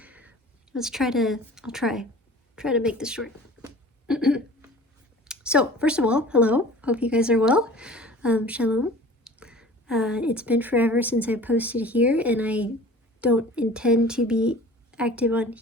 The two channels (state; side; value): normal; both; correlation 0.43